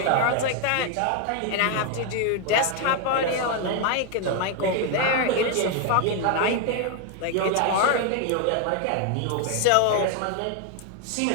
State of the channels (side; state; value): both; different; correlation 0.01